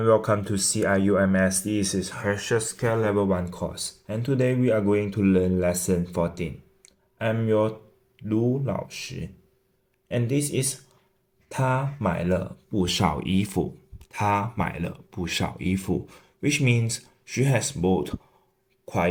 welcome to UMS. This is HSK Level 1 course, and today we are going to learn lesson 14. I'm your Lu 老师 and this is 她买了不少衣服。她买了不少衣服 which means she has bought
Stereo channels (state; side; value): identical; both; correlation 1.00